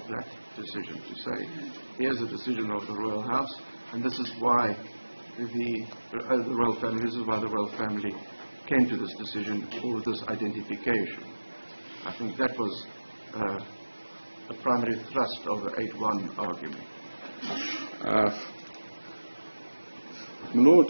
that decision, to say, here's a decision of the Royal House, and this is why the Royal Family, this is why the Royal Family came to this decision, or this identification. I think that was the primary thrust of the 8.1 argument. My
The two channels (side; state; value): both; inverted; correlation -1.00